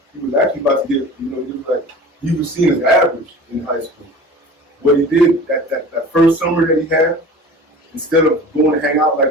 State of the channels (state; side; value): normal; both; correlation 0.39